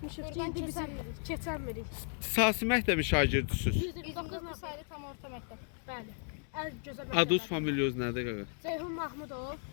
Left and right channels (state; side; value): silent; right; 55 dB below the other